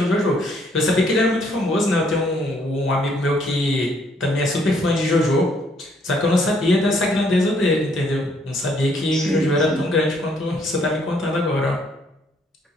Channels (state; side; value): normal; both; correlation 0.67